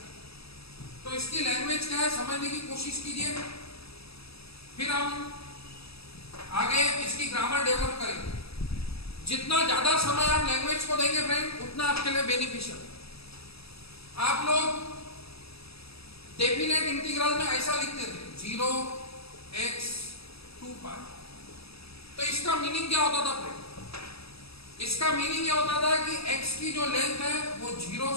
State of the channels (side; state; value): right; late; 0.77 ms